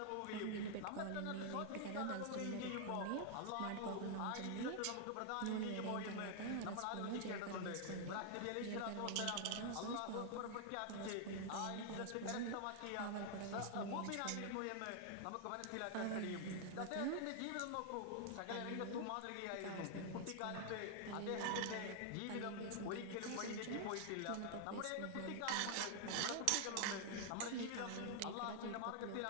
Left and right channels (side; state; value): both; different; correlation 0.00